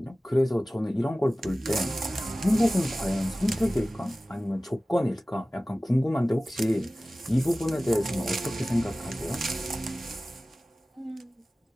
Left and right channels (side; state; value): both; normal; correlation 0.97